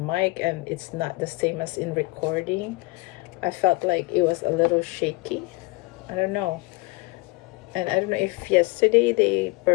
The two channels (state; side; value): quieter; right; 23.3 dB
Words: and it's not the same as in recording. I felt like it was a little shaky. I don't know. And I don't know if yesterday they